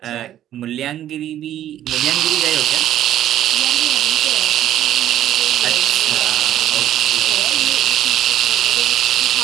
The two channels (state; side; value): quieter; left; 11.9 dB